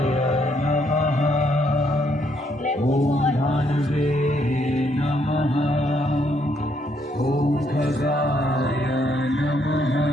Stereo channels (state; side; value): normal; both; correlation 0.72